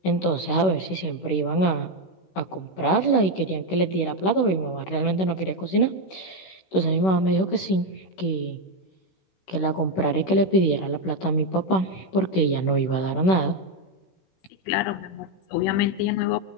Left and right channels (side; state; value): right; late; 16 ms